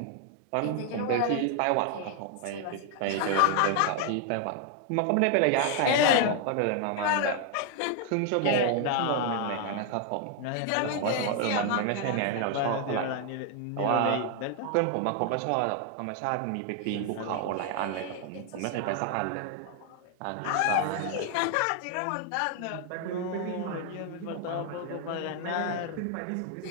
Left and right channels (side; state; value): both; different; correlation 0.00